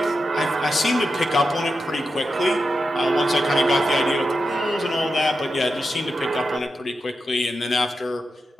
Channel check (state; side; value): normal; both; correlation 0.88